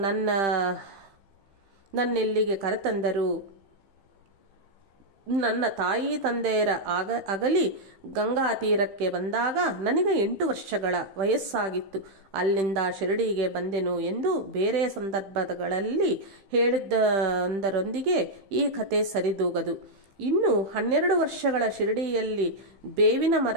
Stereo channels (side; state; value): left; late; 15 ms